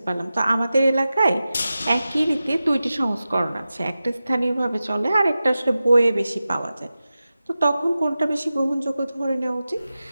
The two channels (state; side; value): inverted; both; correlation -0.94